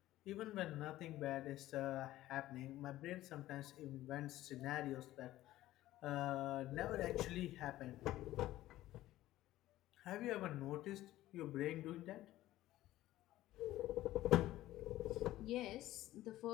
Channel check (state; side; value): quieter; right; 15.2 dB